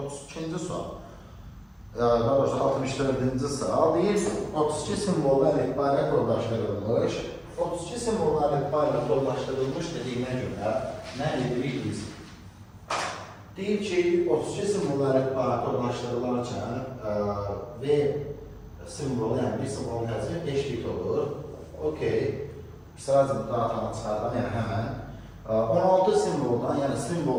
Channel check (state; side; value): identical; both; correlation 1.00